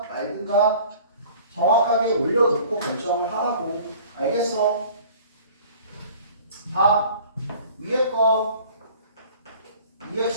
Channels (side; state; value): both; inverted; correlation -0.48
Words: 말든가 정확하게 올려놓고 결정을 하라고. 알겠어? 봐. 위에 거